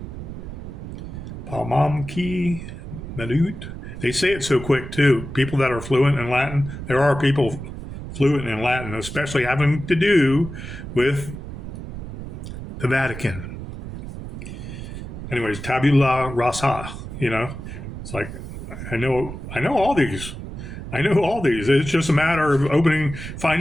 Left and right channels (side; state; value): right; noise; rumble, 9 dB below the sound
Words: Palmamki, Medut. They say it so quick, too. People that are fluent in Latin, there are people fluent in Latin, especially having to do with the Vatican. Anyways, tabula rasa, it's like, I know all these. I know all these. It's just a matter of